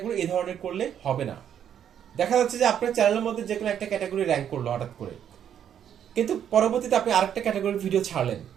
এই ধরনের করলে হবে না। দেখা যাচ্ছে যে আপনার চ্যানেলের মধ্যে যে কোনো একটা ক্যাটাগরি র্যাঙ্ক করলো হঠাৎ করে, কিন্তু পরবর্তীতে আপনি আরেকটা ক্যাটাগরির ভিডিও ছাড়লেন,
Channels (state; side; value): quieter; left; 9.3 dB